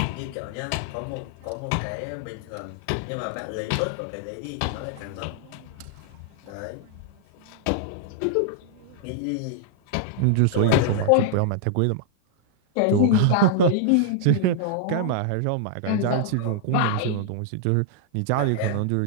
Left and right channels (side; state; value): both; different; correlation -0.01